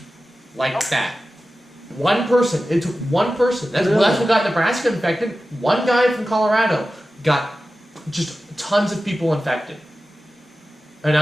Like that. One person. It took one person. That's Really? what got Nebraska infected. One guy from Colorado got just tons of people infected. And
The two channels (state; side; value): normal; both; correlation 0.94